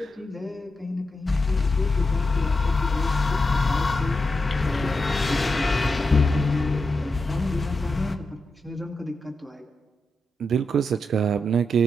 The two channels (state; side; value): normal; both; correlation 0.87